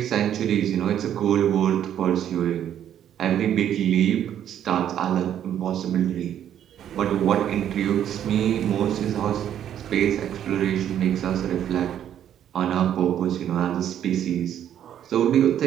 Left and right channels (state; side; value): quieter; left; 10.2 dB